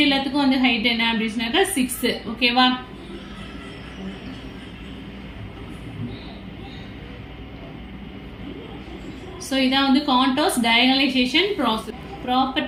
எல்லாத்துக்கும் வந்து ஹைட் என்ன அப்படின்னு சொன்னாக்கா 6. ஓகேவா? ஸோ இதான் வந்து Cantor's diagonalization process.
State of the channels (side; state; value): both; identical; correlation 1.00